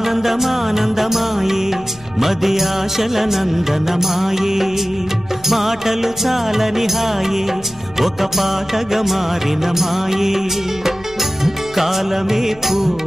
మది ఆశల నందనమాయే. మాటలు చాలని హాయే ఒక పాటగా మారిన మాయే. కాలమే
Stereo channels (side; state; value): right; noise; hum, 23 dB below the sound